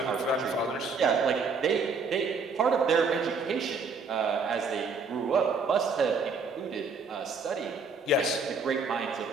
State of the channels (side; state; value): left; quieter; 4.4 dB